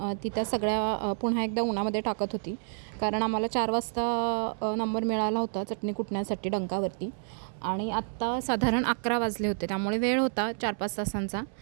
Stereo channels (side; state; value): left; silent; 58 dB below the other